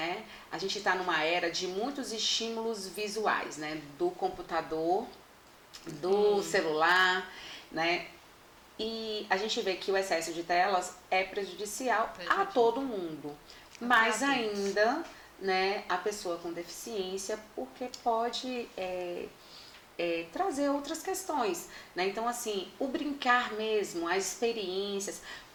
A gente está numa era de muitos estímulos visuais, né? Do computador, do celular, né? E a gente vê que o excesso de telas é prejudicial a todo mundo, mais ainda, né, a pessoa com deficiência, porque pode trazer outras questões, né? Então, assim, o brincar mesmo, as experiências,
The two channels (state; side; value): identical; both; correlation 1.00